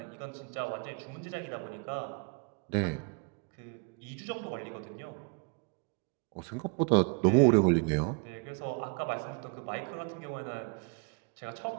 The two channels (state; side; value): quieter; left; 35.5 dB